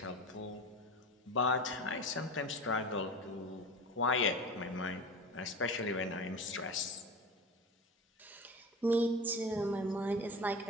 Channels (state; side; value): normal; both; correlation 0.30